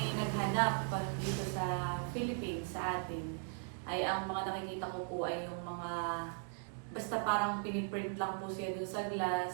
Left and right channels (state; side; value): silent; left; 52 dB below the other